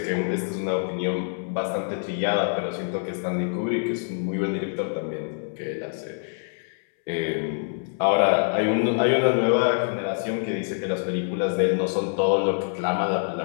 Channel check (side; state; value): right; silent; 61 dB below the other